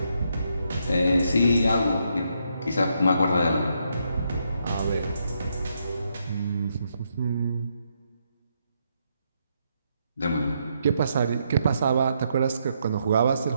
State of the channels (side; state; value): both; inverted; correlation -0.78